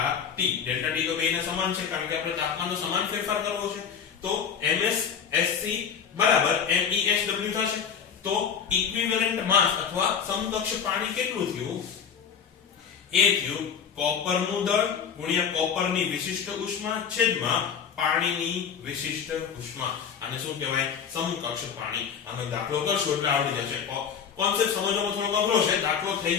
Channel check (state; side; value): quieter; right; 7.3 dB